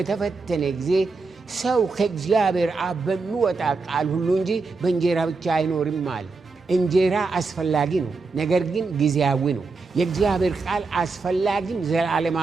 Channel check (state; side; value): quieter; left; 4.1 dB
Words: ጊዜ ሰው ከእግዚአብሔር አብ በሚወጣ ቃል ሁሉ እንጂ በእንጀራ ብቻ አይኖርም አለ። እንጀራ አስፈላጊ ነው፣ ነገር ግን ጊዜያዊ ነው። የእግዚአብሔር ቃል አስፈላጊም